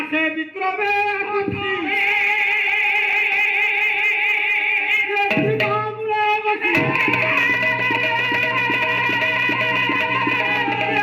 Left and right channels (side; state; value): both; identical; correlation 1.00